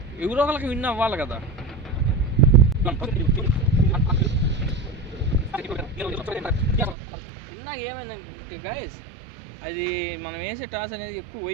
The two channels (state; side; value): drops out; left; at 7.0 s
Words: ఎవరో ఒకరికి విన్ అవ్వాలి కదా. ఇందాక ఏమైందంటే గాయస్, అది మనం వేసే టాస్ అనేది ఎక్కువ